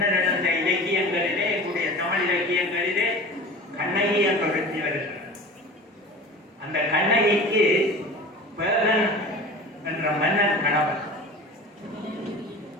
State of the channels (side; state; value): both; normal; correlation 0.36